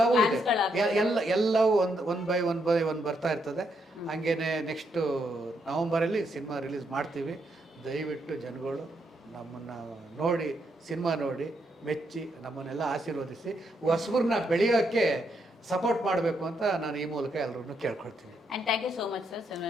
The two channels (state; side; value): normal; both; correlation 0.78